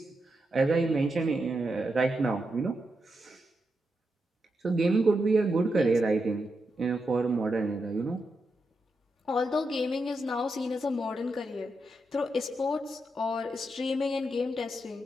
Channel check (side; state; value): both; normal; correlation 0.85